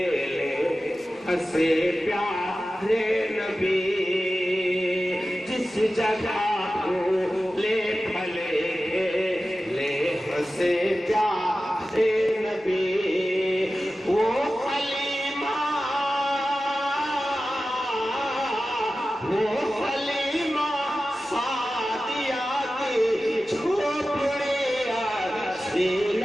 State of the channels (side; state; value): both; normal; correlation 0.94